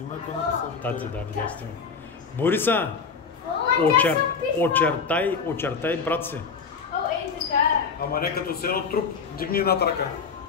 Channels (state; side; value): quieter; right; 5.5 dB